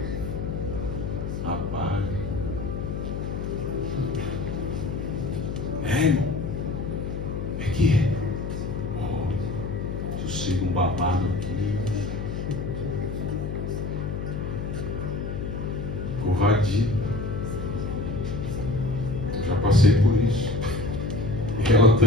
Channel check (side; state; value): left; noise; hum, 5 dB below the sound